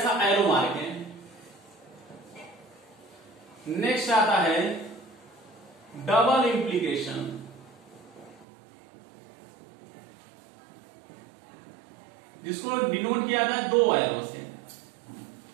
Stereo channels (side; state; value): left; drops out; at 8.5 s